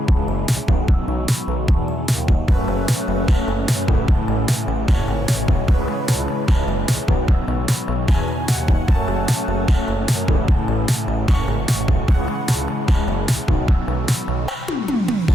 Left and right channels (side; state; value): both; normal; correlation 0.81